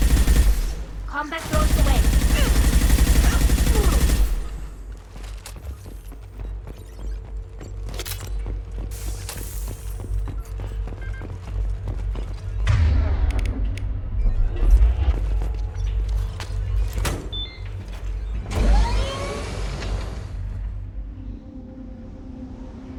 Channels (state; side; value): identical; both; correlation 1.00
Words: Combat throws away.